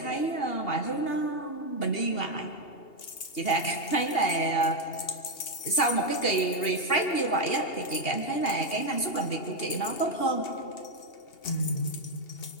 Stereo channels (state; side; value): late; right; 2.8 ms